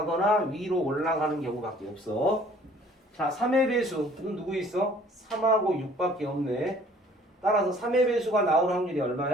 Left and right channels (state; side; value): normal; both; correlation 0.55